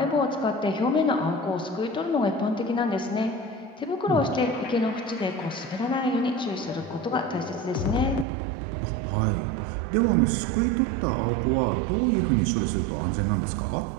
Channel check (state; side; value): drops out; left; at 8.2 s